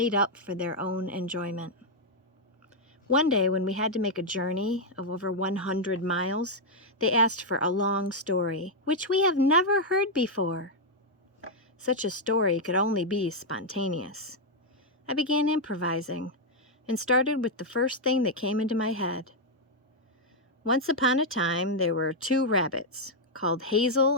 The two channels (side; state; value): both; normal; correlation -0.01